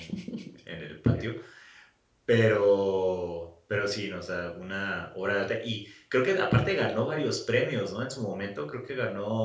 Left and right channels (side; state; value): both; identical; correlation 1.00